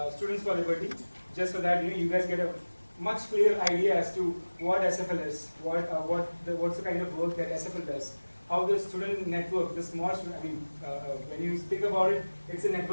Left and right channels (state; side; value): inverted; both; correlation -1.00